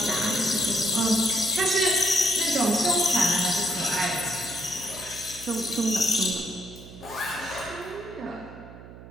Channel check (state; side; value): noise; right; hum, 17 dB below the sound